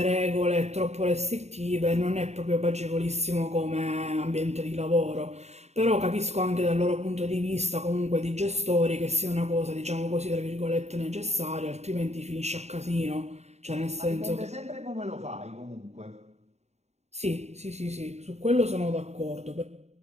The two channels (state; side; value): late; left; 0.32 ms